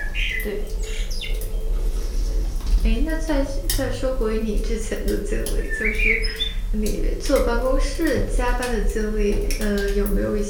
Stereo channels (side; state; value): both; identical; correlation 1.00